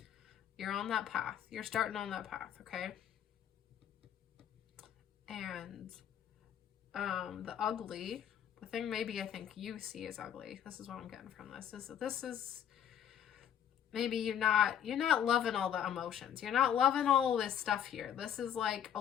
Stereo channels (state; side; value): quieter; right; 9.5 dB